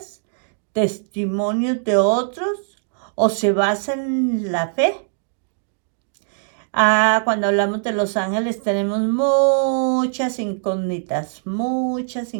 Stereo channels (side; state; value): left; silent; digital silence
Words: testimonios de otros, o se basan en la fe? Cuando hablamos de los ángeles tenemos muchas incógnitas, muchas